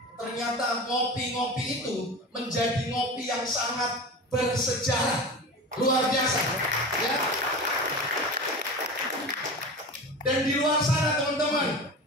Ternyata ngopi-ngopi itu menjadi ngopi yang sangat bersejarah, luar biasa. Ya. Dan di luar sana, teman-teman,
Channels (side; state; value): both; normal; correlation 0.30